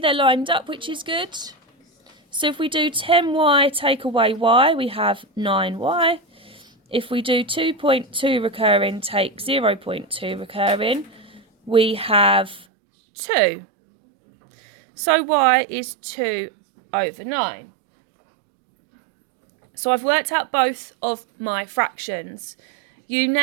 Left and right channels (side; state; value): left; drops out; at 12.7 s